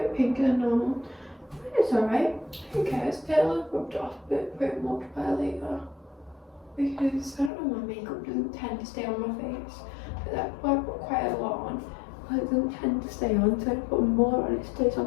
pinker than normal. It's alright. Who cares? It'll have rubbed off a bit much by later. Because I don't know, my makeup doesn't tend to stay on my face. But that's why I put quite a lot on. But it doesn't tend to stay on, so I put more on, it stays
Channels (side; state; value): right; drops out; at 7.5 s